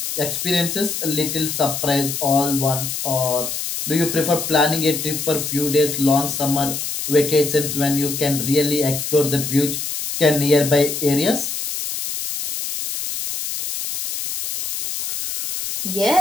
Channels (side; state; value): left; noise; hiss, 4 dB below the sound